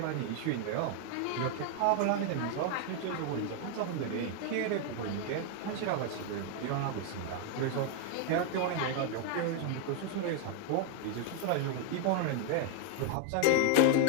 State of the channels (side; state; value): both; different; correlation 0.01